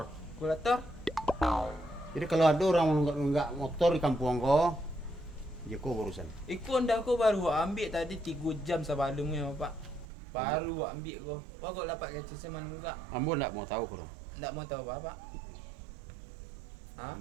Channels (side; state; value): left; drops out; at 10.1 s